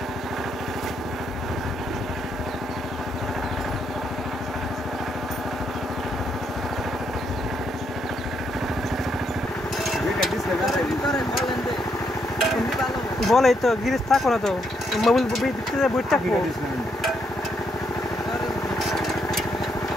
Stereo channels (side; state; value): both; normal; correlation 0.76